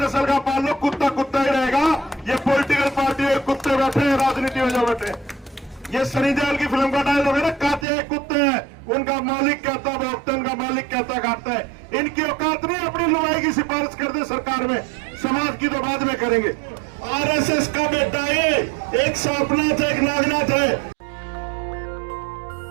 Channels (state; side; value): drops out; left; at 7.9 s